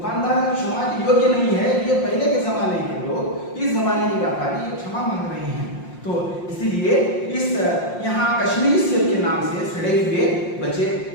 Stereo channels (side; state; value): right; late; 5.6 ms